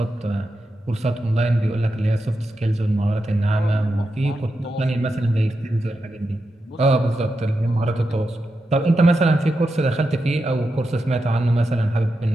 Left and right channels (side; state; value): both; normal; correlation 0.88